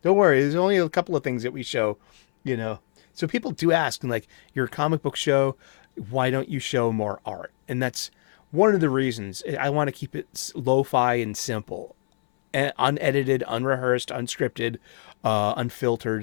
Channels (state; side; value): silent; right; 62 dB below the other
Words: Don't worry, there's only a couple of things that we show, So people do ask, and like, you're a comic book show, why don't you show more art? And that's one of the reasons. I want to keep it lo-fi and simple, and unedited, unrehearsed, unscripted,